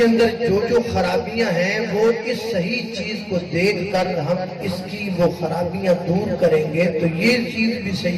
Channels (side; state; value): both; identical; correlation 1.00